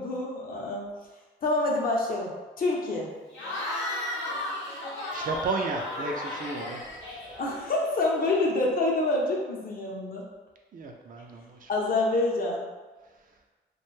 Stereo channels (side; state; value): both; normal; correlation 0.32